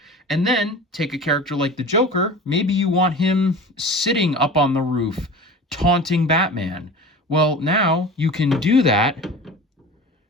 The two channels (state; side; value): normal; both; correlation 0.36